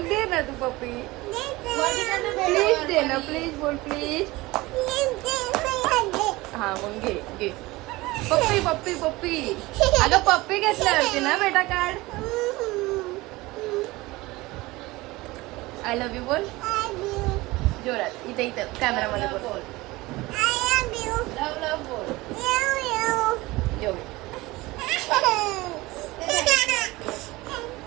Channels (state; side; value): quieter; left; 20.6 dB